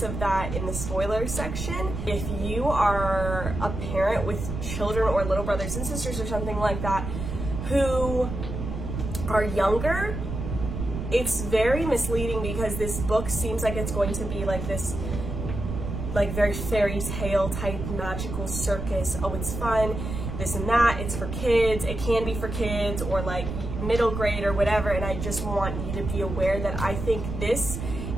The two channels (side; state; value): right; noise; rumble, 5 dB below the sound